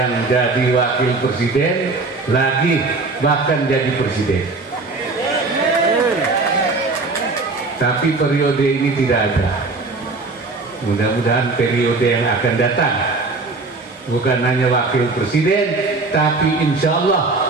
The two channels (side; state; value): left; quieter; 3.7 dB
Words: jadi wakil presiden lagi, bahkan jadi presiden. Tapi periode ini tidak ada. Mudah-mudahan periode yang akan datang bukan hanya wakil presiden, tapi insya